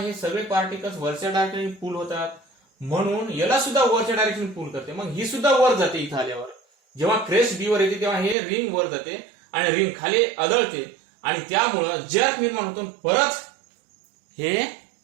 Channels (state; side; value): drops out; left; at 8.3 s